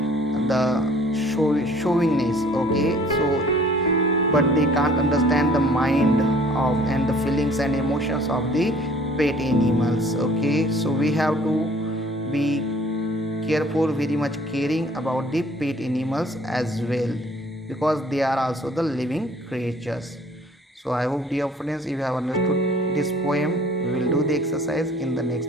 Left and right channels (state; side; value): normal; both; correlation 0.54